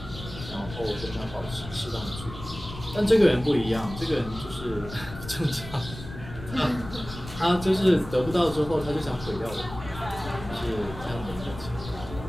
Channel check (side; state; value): left; noise; rumble, 13 dB below the sound